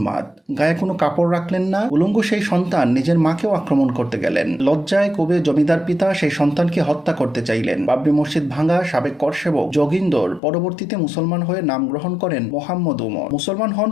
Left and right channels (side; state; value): right; drops out; at 10.4 s